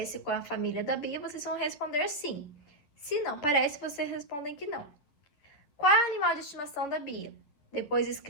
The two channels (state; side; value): late; right; 11 ms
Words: com a família da Bia, vocês vão responder sim. Se não parece, vocês respondem que não. Qual é o animal de estimação da Bia? Depois